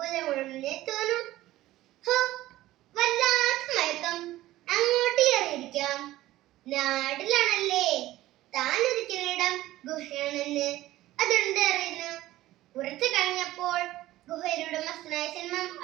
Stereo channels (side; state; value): left; quieter; 16.0 dB